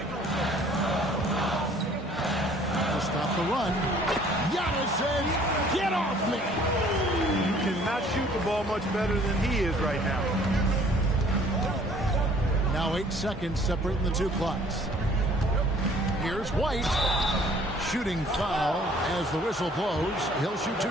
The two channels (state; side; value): normal; both; correlation 0.56